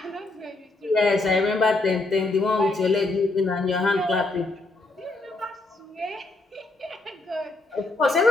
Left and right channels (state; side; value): quieter; right; 3.1 dB